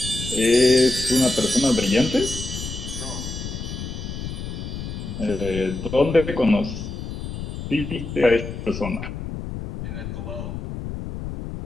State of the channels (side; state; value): left; noise; rumble, 7 dB below the sound